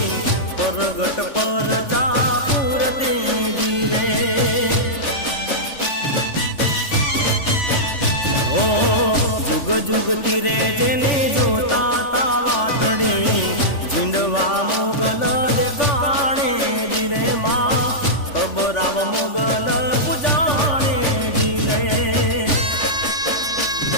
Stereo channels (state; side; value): late; right; 3.4 ms